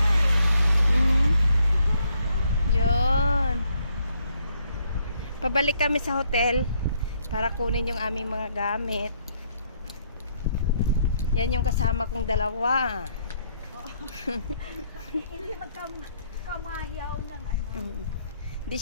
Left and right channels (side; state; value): both; inverted; correlation -0.71